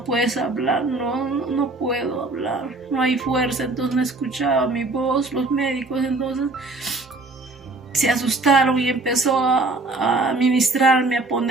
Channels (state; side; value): quieter; left; 3.2 dB